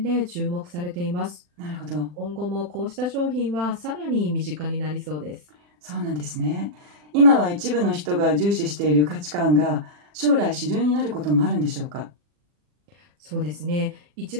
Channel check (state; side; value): late; left; 40 ms